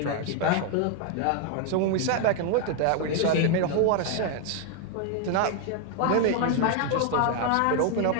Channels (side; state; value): both; different; correlation 0.00